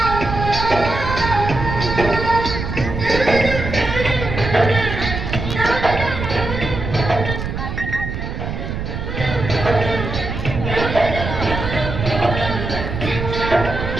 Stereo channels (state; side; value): noise; right; rumble, 5 dB below the sound